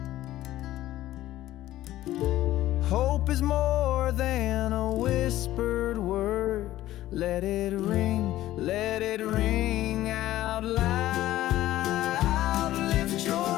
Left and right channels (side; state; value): right; quieter; 14.7 dB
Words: Hope is more than a whispered word. Let it ring out loud. Lift